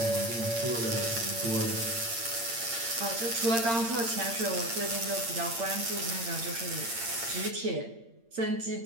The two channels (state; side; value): late; left; 8.8 ms